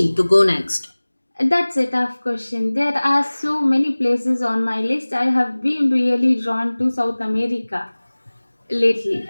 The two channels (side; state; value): both; inverted; correlation -1.00